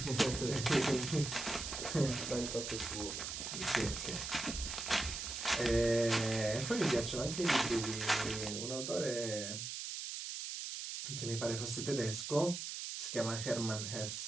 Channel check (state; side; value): noise; right; hiss, 5 dB below the sound